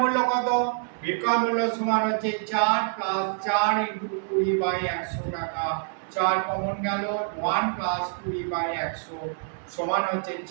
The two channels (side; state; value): left; silent; digital silence